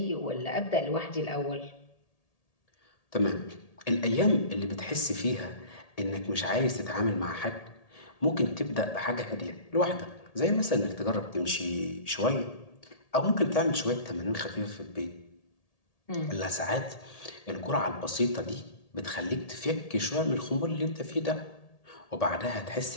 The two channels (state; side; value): late; right; 1.8 ms